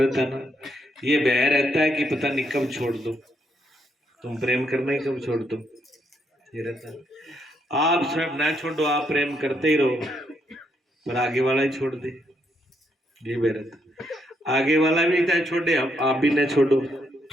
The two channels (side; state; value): both; normal; correlation 0.76